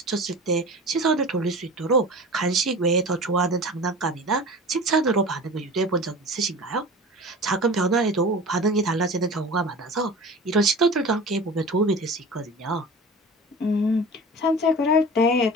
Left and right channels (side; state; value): both; normal; correlation 0.36